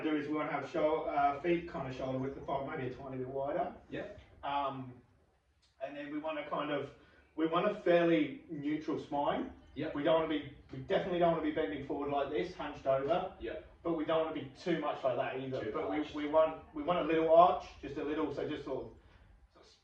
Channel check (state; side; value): identical; both; correlation 1.00